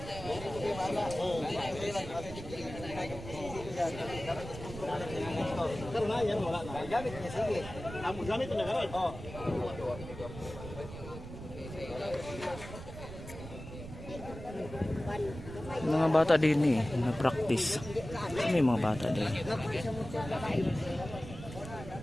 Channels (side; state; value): right; noise; rumble, 11 dB below the sound